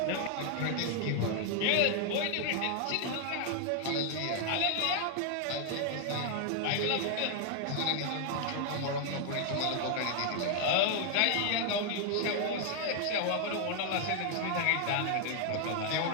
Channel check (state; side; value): different; both; correlation 0.00